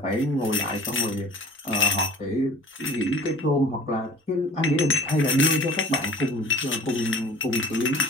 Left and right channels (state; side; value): normal; both; correlation 0.45